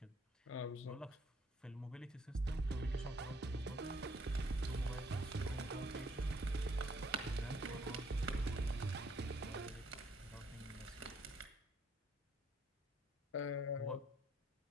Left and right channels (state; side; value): normal; both; correlation 0.67